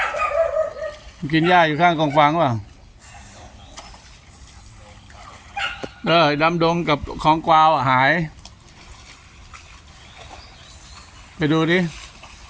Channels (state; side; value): identical; both; correlation 1.00